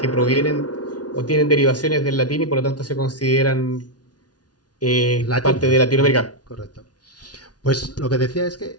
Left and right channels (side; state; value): right; late; 0.69 ms